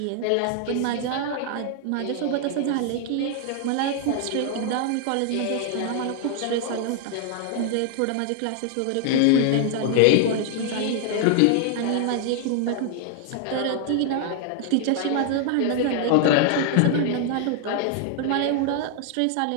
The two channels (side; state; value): both; different; correlation 0.00